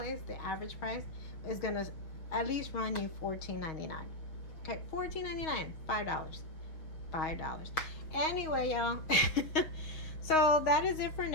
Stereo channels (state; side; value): late; right; 6.1 ms